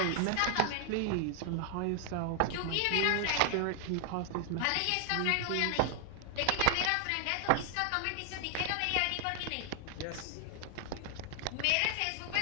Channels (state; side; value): different; both; correlation 0.00